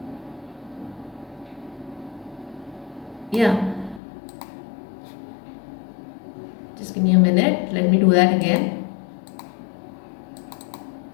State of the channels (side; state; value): right; drops out; at 4.0 s